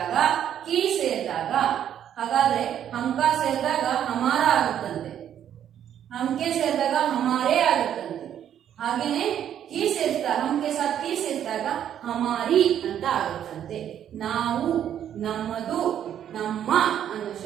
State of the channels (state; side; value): quieter; left; 10.0 dB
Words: ಕಿ ಸೇರಿದಾಗ, ಹಾಗಾದ್ರೆ ಹಮ್ಕ ಸೇರಿದಾಗ ಹಮಾರ ಆಗುತ್ತಂತೆ, ಹಮ್ಕೆ ಸೇರಿದಾಗ ಹಮಾರೇ ಆಗುತ್ತಂತೆ. ಹಾಗೇನೆ ಕಿ ಸೇರಿಸಿದಾಗ, ಹಮ್ಕೆ ಸಾಥ್ ಕಿ ಸೇರಿಸಿದಾಗ ಹಮಾರಿ ಅಂತ ಆಗುತ್ತಂತೆ. ನಾವು, ನಮ್ಮದು, ನಮ್ಮ ಅನ್ನೋ